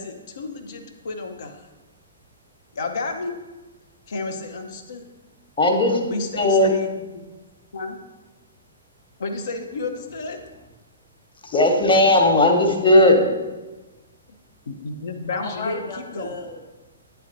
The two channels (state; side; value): inverted; both; correlation -0.32